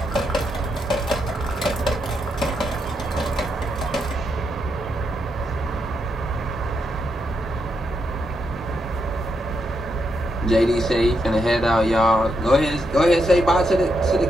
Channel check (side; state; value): both; normal; correlation 0.81